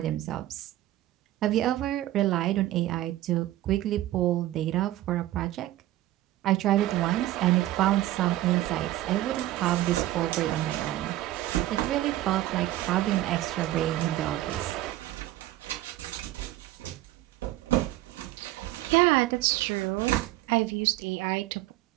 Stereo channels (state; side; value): quieter; left; 15.2 dB